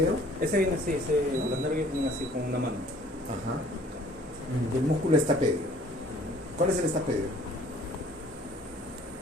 Ese viene así, los nervios vienen así con una mano. Ajá. Y el músculo estapedio. ¿Cuál es el estapedio?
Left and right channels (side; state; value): both; normal; correlation 0.55